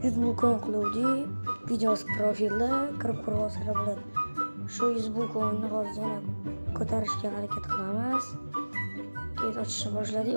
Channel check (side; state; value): both; inverted; correlation -1.00